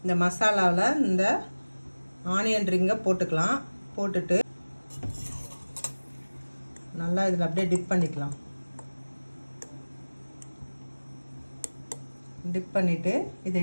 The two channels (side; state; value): both; inverted; correlation -1.00